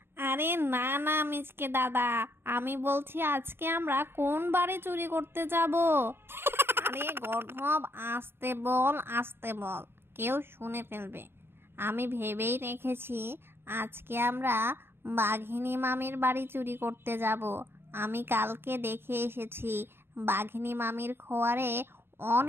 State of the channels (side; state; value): left; late; 0.11 ms